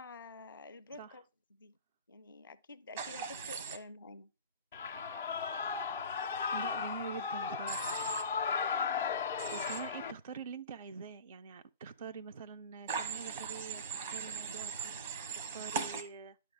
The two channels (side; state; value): both; inverted; correlation -0.36